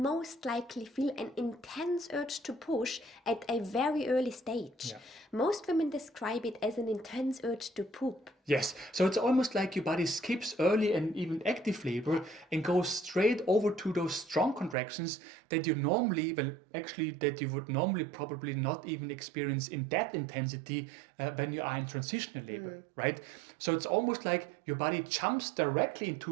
likely feel an intense urge to push at a very early stage. Most women describe it as an intense urge to poop. Yes, so it's almost like your body skips early and even active labor and goes straight over to those strong contractions that you normally, that you would normally probably not even experience in that intensity when you are in transitional labor, right? So it's almost like your body jumps directly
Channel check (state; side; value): drops out; left; at 14.8 s